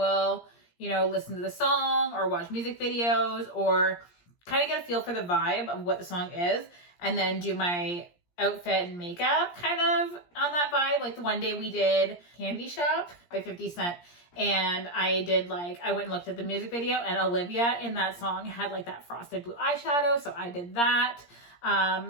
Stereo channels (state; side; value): late; right; 17 ms